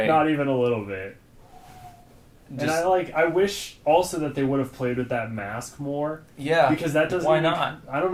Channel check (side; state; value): both; identical; correlation 1.00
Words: Not even a little bit. And I wish also that they would have played with that mask more. Yeah. Because that doesn't Why not? I don't